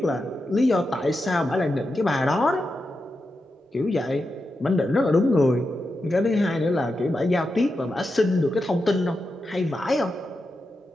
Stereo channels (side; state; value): both; normal; correlation 0.88